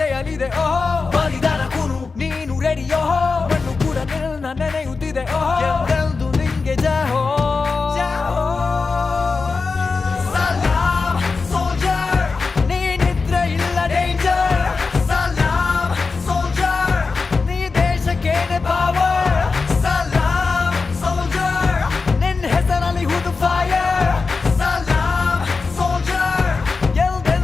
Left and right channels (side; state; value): right; quieter; 4.4 dB